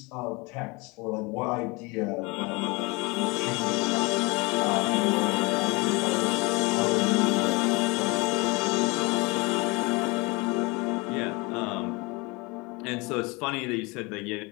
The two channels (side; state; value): right; quieter; 26.7 dB